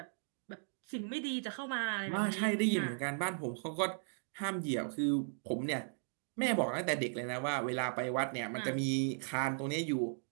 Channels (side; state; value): left; silent; digital silence